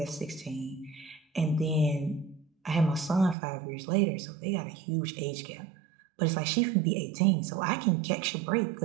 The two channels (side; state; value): left; drops out; at 3.4 s